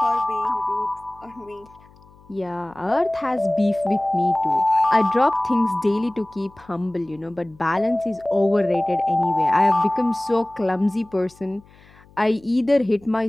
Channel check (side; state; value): left; noise; hum, 27 dB below the sound